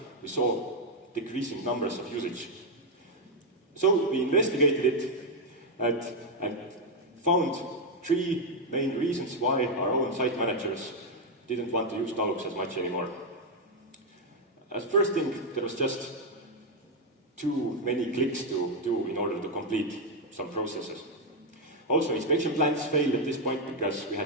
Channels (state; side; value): normal; both; correlation 0.02